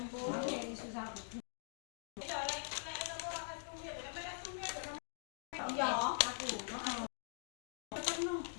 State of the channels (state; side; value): silent; right; digital silence